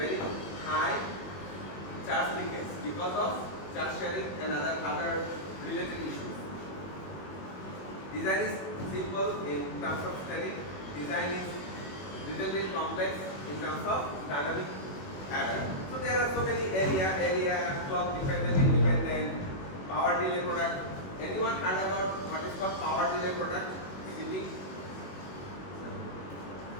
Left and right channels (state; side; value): late; right; 21 ms